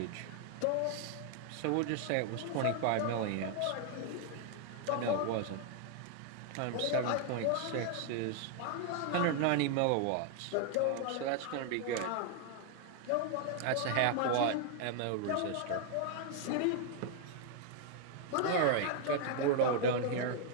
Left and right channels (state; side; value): different; both; correlation 0.00